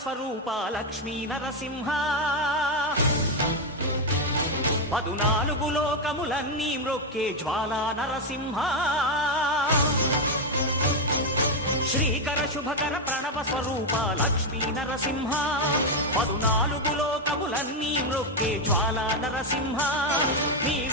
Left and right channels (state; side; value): normal; both; correlation 0.04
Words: స్వరూప లక్ష్మీ నరసింహ 14 లోకములన్నీ మ్రొక్కే జ్వాలా నరసింహ శ్రీకర శుభకర ప్రణవ స్వరూప లక్ష్మీ నరసింహ 14 లోకములన్నీ మ్రొక్కే జ్వాలా నరసింహ